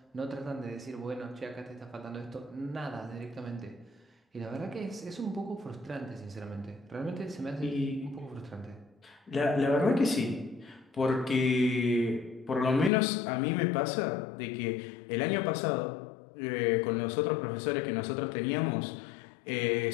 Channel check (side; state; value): right; drops out; at 12.9 s